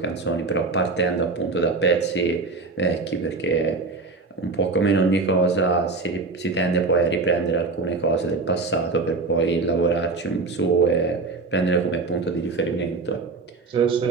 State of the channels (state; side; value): quieter; left; 3.8 dB